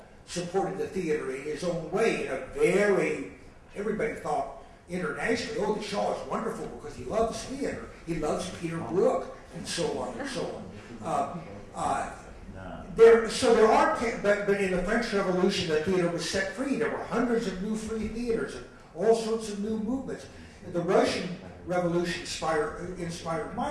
supported the theater in his own way, in a very, everybody thought internationally, oh, the Shaw is wonderful because he loves theater. He loves Peter Brook, and so on and so on. There are, but in the French Revolution, the theater was set free. There were hundreds of new free theaters and all sorts of new movements. And the Russian Revolution inspired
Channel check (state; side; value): identical; both; correlation 1.00